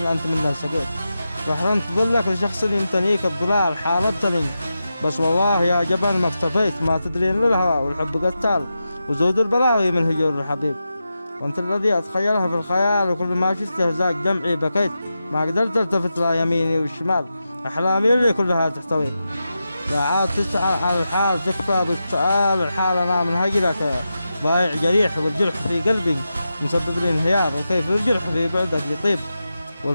منه سقيت، وحرمت ظلك لشخص يمتنيك الضلال، حاربتني بس والله يا جبل ما اكتفيت، ما تدرين للهوى والحب قتال، وزود البلاوي من هجور الحبيب، وانت الذي اتخيلها في الخيال، وكل ما شفته زاق دمعي بكيت، ما قدرت التفت لا يميني والشمال، احلامي اللي كلها تحتويك، لا عاد تسعى على الحال تكفى بالسؤال، الحال انا من هجرك ضايع جريح، والجرح في قلبي مسبب لي انهيار، وكيف الجرح في بعدك يطيب،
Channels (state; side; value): inverted; both; correlation -0.90